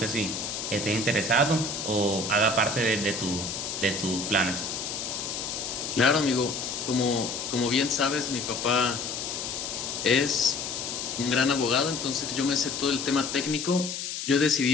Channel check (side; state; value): left; noise; hiss, 5 dB below the sound